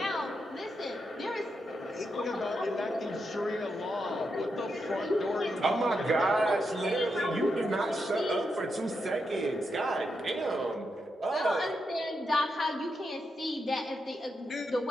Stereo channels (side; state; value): both; normal; correlation 0.84